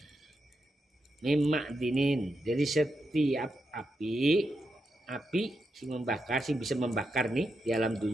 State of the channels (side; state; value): both; normal; correlation 0.85